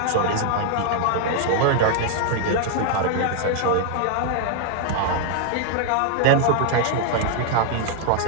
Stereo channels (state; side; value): different; both; correlation 0.00